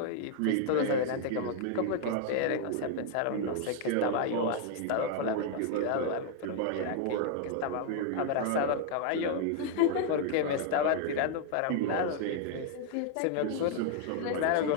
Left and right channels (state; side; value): different; both; correlation 0.00